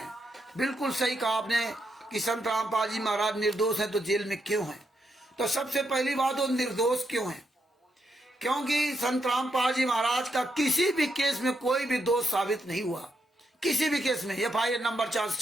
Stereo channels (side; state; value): both; normal; correlation 0.81